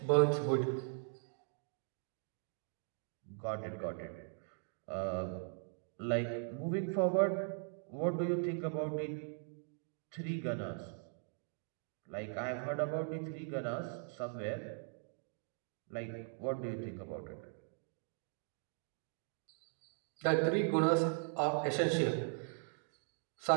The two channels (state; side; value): silent; left; 51 dB below the other